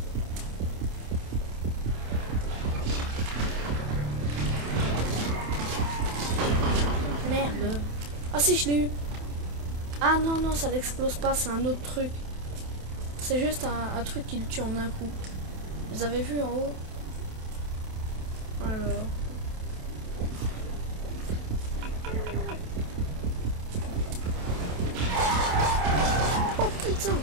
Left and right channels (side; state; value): left; late; 27 ms